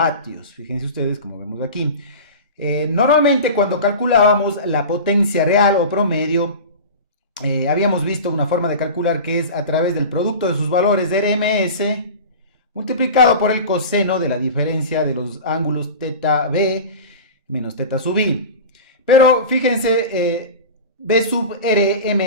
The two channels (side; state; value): both; inverted; correlation -0.31